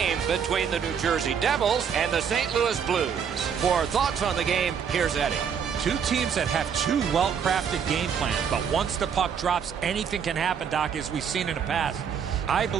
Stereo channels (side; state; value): left; quieter; 7.3 dB